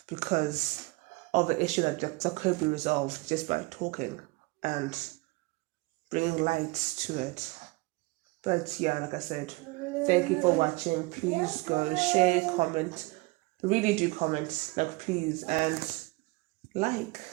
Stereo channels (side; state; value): left; quieter; 24.5 dB